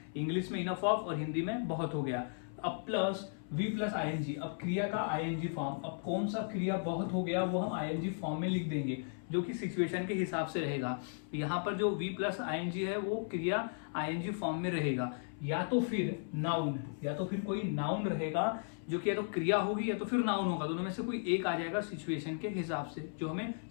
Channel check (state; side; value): silent; right; 54 dB below the other